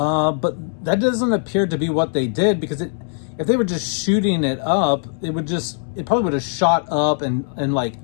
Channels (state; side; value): silent; right; 65 dB below the other